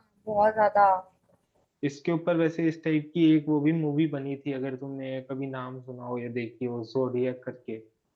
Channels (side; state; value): both; identical; correlation 1.00